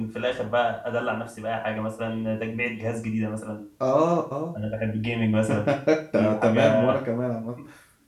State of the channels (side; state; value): both; identical; correlation 1.00